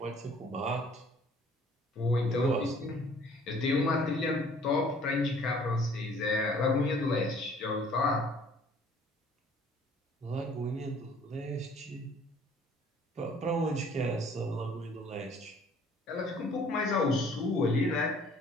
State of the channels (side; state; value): both; normal; correlation 0.56